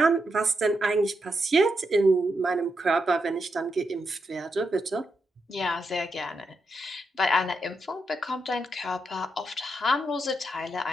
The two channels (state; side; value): normal; both; correlation 0.83